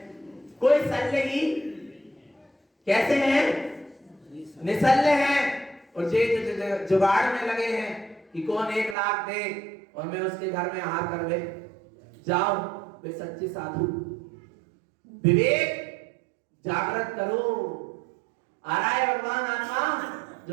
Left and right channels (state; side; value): drops out; left; at 9.0 s